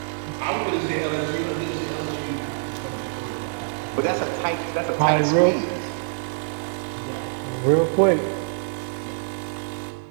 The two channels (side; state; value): left; silent; 56 dB below the other